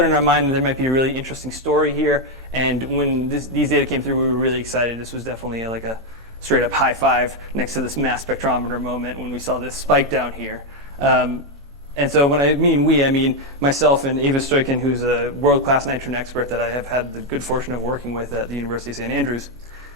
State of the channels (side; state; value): both; normal; correlation 0.03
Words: in our mind that there might be a really interesting story here. And when these data came through, we were really excited. This was definitely like a straight up high five next to this mass spectrometer moment when we saw this spike down here. And so when I mean we, I mean myself and Eva Stoikin, who's a world-class nitrogen expert that I have had the good fortune of working with at the University of St. Andrews.